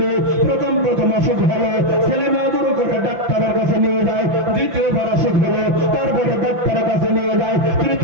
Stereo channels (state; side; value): late; left; 5.9 ms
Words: প্রথম অসুখ হলো, ছেলে মেয়েদের করে ডাক্তারের কাছে নিয়ে যায়, দ্বিতীয়বার অসুখ হলো, তারপরে ডাক্তারের কাছে নিয়ে যায়,